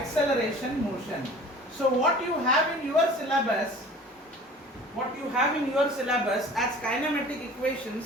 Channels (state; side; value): normal; both; correlation 0.44